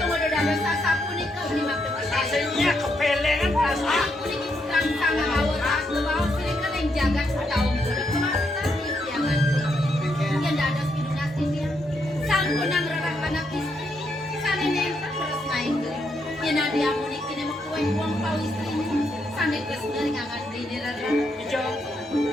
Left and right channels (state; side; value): normal; both; correlation 0.78